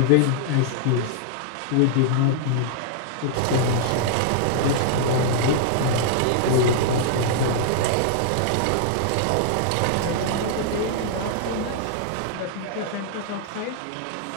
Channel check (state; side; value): different; both; correlation -0.01